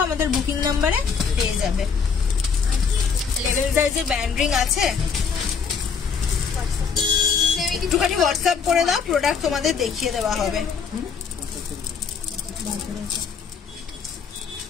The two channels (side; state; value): right; quieter; 6.0 dB